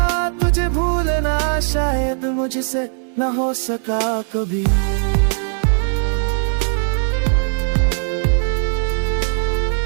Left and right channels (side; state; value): left; silent; 67 dB below the other